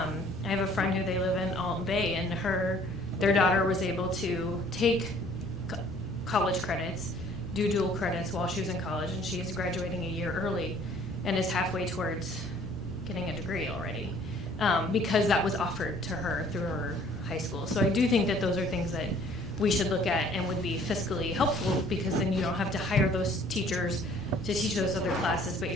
have a friend who they live in Alton Bay, and their daughter was able to take college credits, do dual credits while she was in college, and she is graduating a year early and is halfway towards getting a degree already, because that was offered to her through her high school. So I do think that those are things that we should look at and would be fiscally helpful, because then you don't have to hire those teachers to teach those other classes, but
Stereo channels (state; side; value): normal; both; correlation 0.56